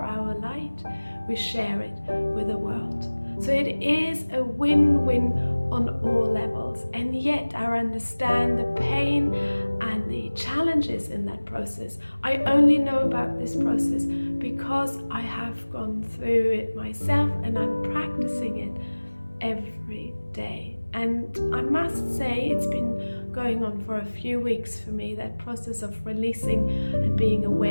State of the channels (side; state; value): both; inverted; correlation -1.00